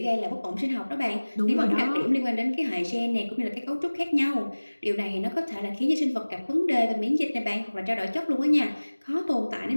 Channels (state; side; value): inverted; both; correlation -1.00